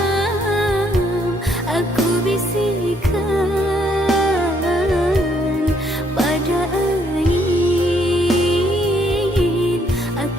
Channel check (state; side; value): normal; both; correlation 0.70